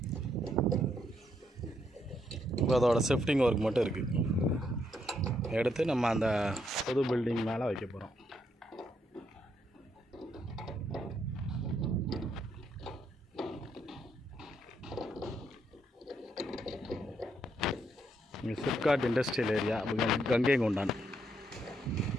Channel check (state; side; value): normal; both; correlation 0.76